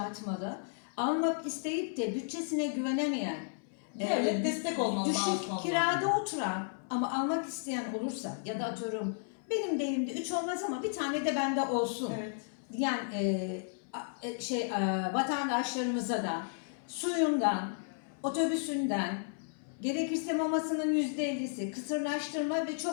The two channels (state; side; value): silent; right; 55 dB below the other